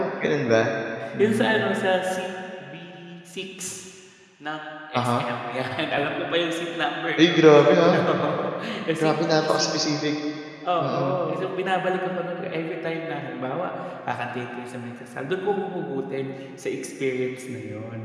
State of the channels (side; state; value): both; identical; correlation 1.00